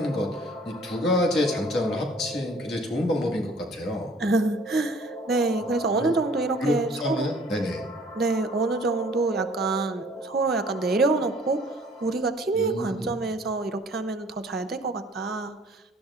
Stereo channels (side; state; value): both; normal; correlation 0.55